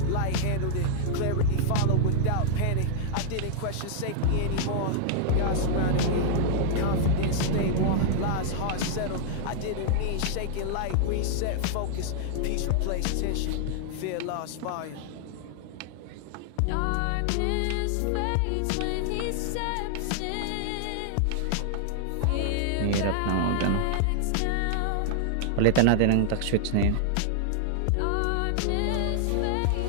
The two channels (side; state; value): both; different; correlation -0.01